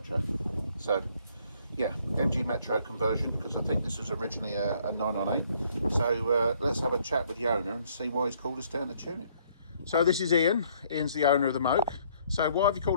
So yeah, MG Metro conversion, because I think this was originally a 998. So let's have a chat with the owner and see why he's called us down to tune it. So this is Ian. Ian's the owner of the Moke. So why have you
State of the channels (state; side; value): inverted; both; correlation -0.64